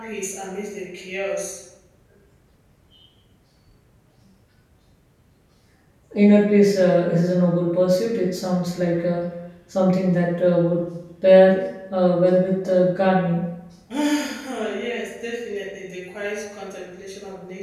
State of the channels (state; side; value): identical; both; correlation 1.00